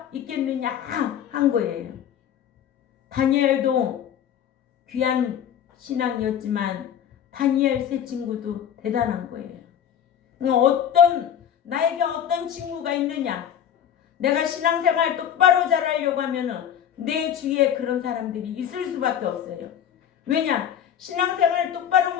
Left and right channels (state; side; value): quieter; right; 9.5 dB